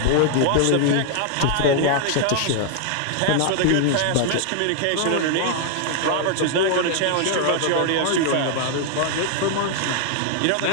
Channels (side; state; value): both; different; correlation 0.00